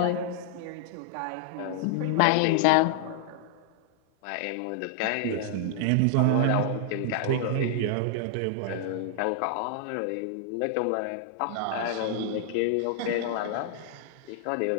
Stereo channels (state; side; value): different; both; correlation -0.01